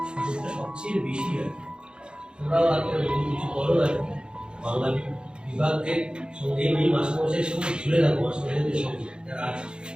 সুযোগটা সবচেয়ে বেশি আর কি। তোমরাও একটা কিছু করো আর কি, বাংলা বিভাগের সঙ্গে এই মাস্টারমশাইয়ের সঙ্গে ঝুলে থাকো, মাস্টারমশাইদের সঙ্গে যারা আছে,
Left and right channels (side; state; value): left; late; 0.050 ms